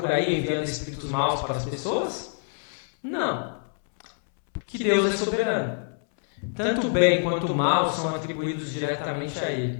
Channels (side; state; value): right; silent; 61 dB below the other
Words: aí enviando espíritos maus para as pessoas? Não. Porque Deus é soberano. Tanto o bem quanto o mal são atribuídos diretamente a